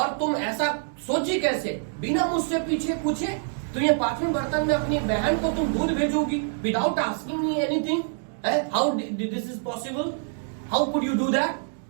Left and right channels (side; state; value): left; silent; digital silence